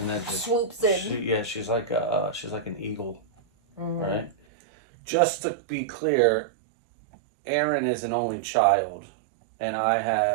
then just swoops in. She's like an eagle, right? Just to be clear, Aaron is an only child, and I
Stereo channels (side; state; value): left; drops out; at 4.4 s